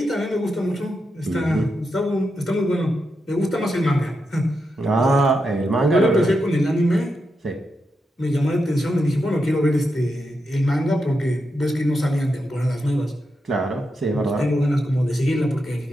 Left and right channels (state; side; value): normal; both; correlation 0.86